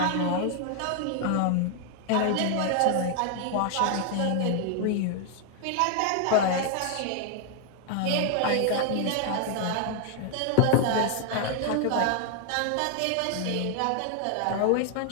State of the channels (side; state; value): both; different; correlation 0.00